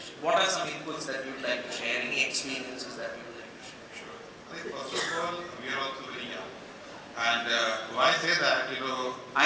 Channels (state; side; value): identical; both; correlation 1.00